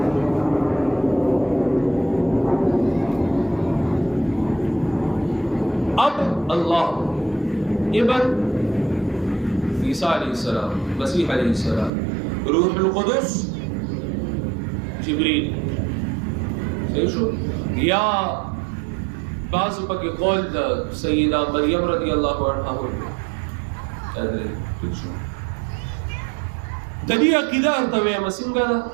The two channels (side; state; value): left; drops out; at 11.9 s